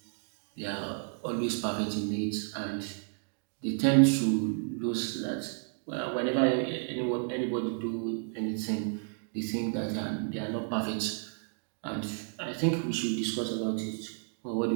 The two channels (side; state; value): left; silent; 57 dB below the other